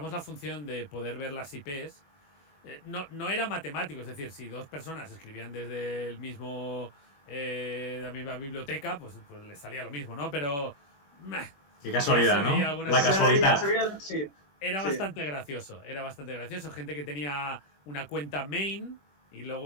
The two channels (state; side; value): late; right; 21 ms